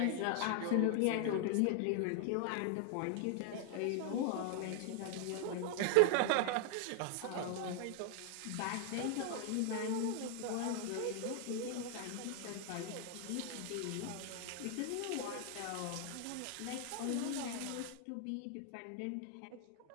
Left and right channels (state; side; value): different; both; correlation 0.00